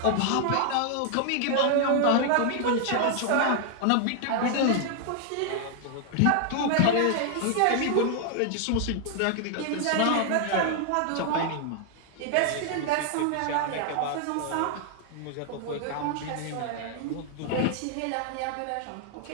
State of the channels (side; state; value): both; different; correlation 0.00